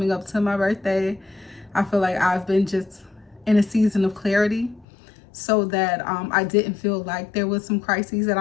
up to my birthday, I feel like I've been just in a season of clarity, so that I didn't feel like there was some crises that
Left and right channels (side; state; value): right; drops out; at 4.9 s